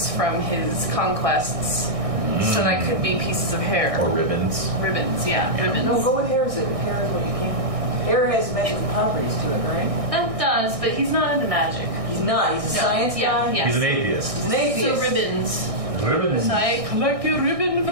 from his conquests, so that could be pieces of hair, Or ribbons. ribbons. Yeah, ribbons. No, go with hair. Hair is what you can't. Hair has magical properties to it, right? That does, but he's not into magic. He's not. He's a science guy. Yeah. He's an atheist. He's an atheist. So ribbons. Ribbons. So I collect a ribbon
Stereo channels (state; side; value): late; left; 1.6 ms